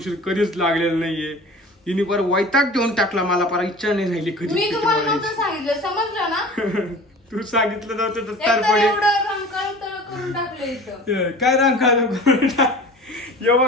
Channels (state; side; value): normal; both; correlation 0.41